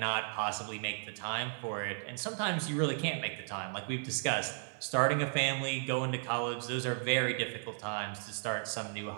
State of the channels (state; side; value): silent; left; 55 dB below the other